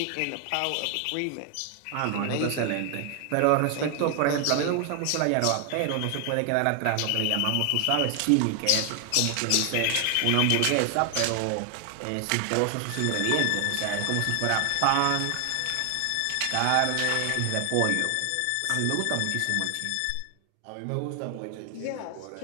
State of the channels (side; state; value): both; different; correlation 0.00